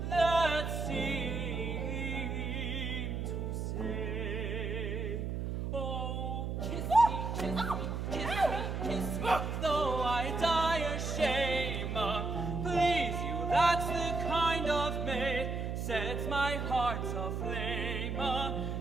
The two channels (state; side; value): noise; right; hum, 3 dB below the sound